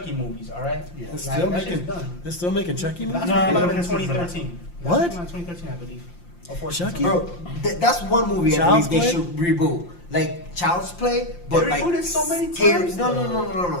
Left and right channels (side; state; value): right; late; 5.7 ms